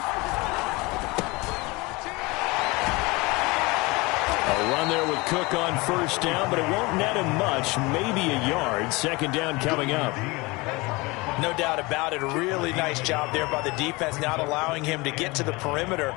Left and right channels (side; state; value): right; quieter; 24.3 dB